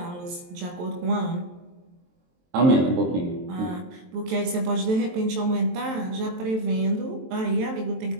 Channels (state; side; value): late; left; 23 ms